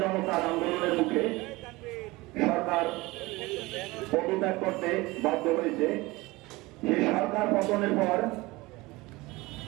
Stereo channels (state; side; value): quieter; left; 21.6 dB